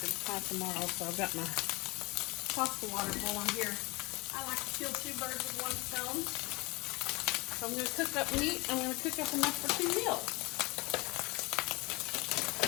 pie tomorrow, so I've got my pasta water boiling here. I like to kill two birds with one stone. So I'm going to cook up meat. I'm going to cook up enough for 2 meals.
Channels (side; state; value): right; quieter; 24.9 dB